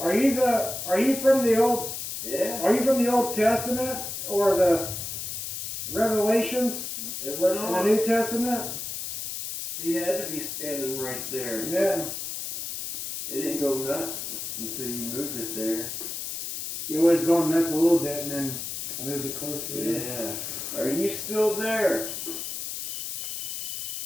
you from the Old Yeah. Are you from the Old Testament or the Revelations It went in the on. New Testament? He had to be standing right there. Yeah. It didn't go nuts until you moved it there. You was going nuts a little bit, and then I moved it closer. Yeah. Are you still there?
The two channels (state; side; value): noise; left; hiss, 5 dB below the sound